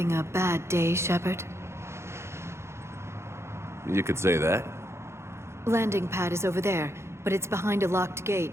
a bad day, Shepard? You could say that. Landing pad is over there, but it's behind a locked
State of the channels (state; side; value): late; left; 0.13 ms